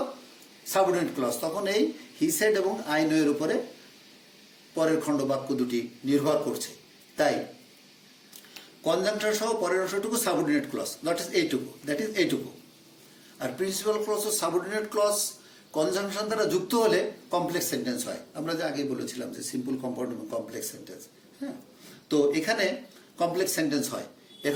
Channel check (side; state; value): both; identical; correlation 1.00